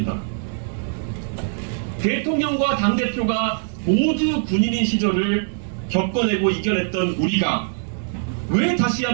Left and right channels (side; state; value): left; silent; 62 dB below the other